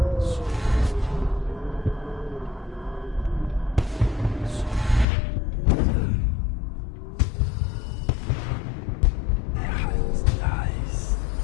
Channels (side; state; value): right; drops out; at 5.1 s